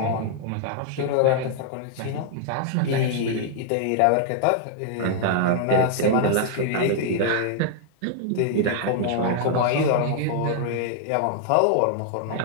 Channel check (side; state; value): both; different; correlation -0.01